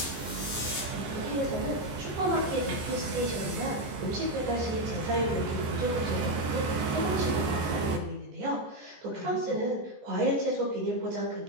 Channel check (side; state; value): left; late; 14 ms